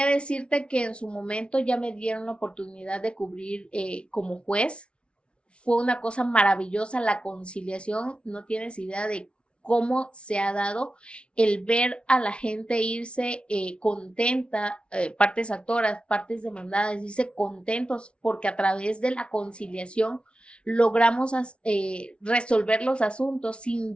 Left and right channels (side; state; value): right; late; 0.059 ms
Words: decirte que en su momento ya me dieron la oportunidad de cubrir como juez. Fue una cosa maravillosa la conciliación, no tienes idea de cómo se ha dado el ver a la gente irse contenta, partes actoras, partes demandadas, irse contentos porque a través de la conciliación logramos resolver los asuntos sin